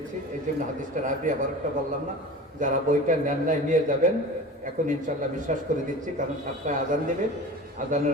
এই জন্য হাদিসটার আগে আবার একটা বললাম না। যারা বইটা নেন নাই নিয়ে যাবেন, এখন ইনশাল্লাহ বিশ্বাস করে দিচ্ছি, কারণ 7টায় আজান দেবে।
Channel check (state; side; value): normal; both; correlation 0.35